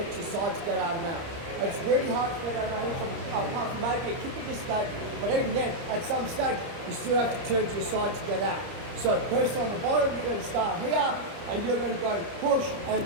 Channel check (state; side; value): late; left; 29 ms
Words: to your side to get out of the mat. It's really hard to get out of the mat apart from maybe a typical state, but even then, at some stage, you still have to turn to your side to get out. So person on the bottom, you're going to start here, and you're going to go push